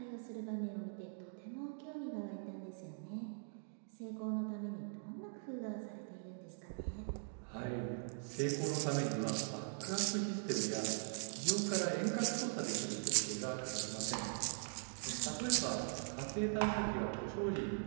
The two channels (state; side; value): silent; left; digital silence